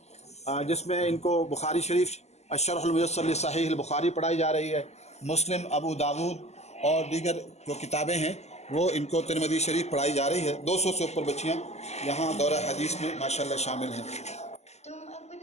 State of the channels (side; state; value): right; late; 0.32 ms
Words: جس میں ان کو بخاری شریف الشرح الميسر لصحیح البخاری پڑھائی جا رہی ہے، مسلم، ابو داود اور دیگر جو کتابیں ہیں وہ ان کو ترمذی شریف پڑھائی جا رہی ہے. 200 سے اوپر بچیاں یہاں دورہ حدیث میں ماشاءاللہ شامل ہیں. تم